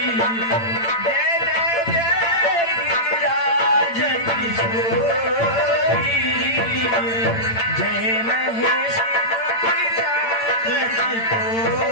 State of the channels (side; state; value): right; late; 8.8 ms